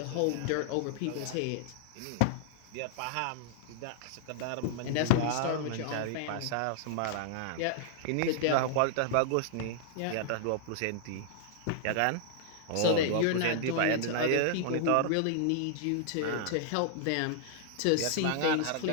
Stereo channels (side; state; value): both; different; correlation -0.01